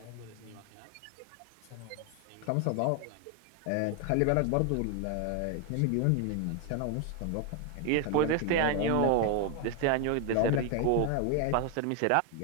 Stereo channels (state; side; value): different; both; correlation 0.01